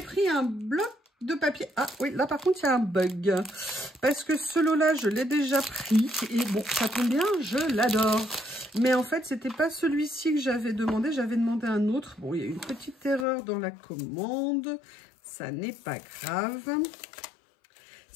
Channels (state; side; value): drops out; right; at 13.2 s